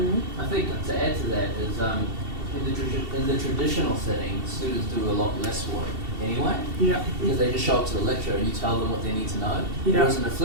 I think to add to that is in the traditional setting, students do a lot less work anyway, because they just show up to the lecture and you tell them what they need to know. Whereas in a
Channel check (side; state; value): left; late; 2.7 ms